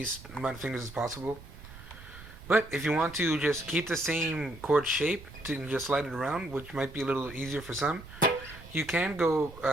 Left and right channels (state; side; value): noise; right; rumble, 17 dB below the sound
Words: amount of fingers as possible. But if you want to just keep the same chord shape to just slide it around, which might be a little easier for some, you can go